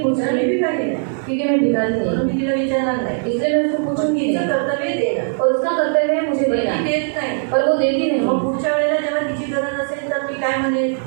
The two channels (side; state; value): left; silent; digital silence